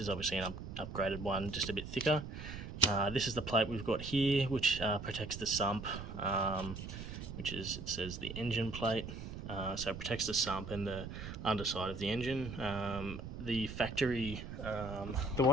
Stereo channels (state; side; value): noise; right; rumble, 9 dB below the sound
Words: obviously an upgraded one, just a bit thicker. This is the plate we've got here, which protects the sump, which is, it says, the engine plate. So it protects the sump and the underside of the engine. The factory, the